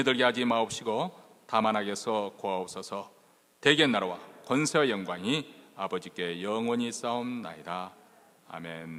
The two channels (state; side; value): identical; both; correlation 1.00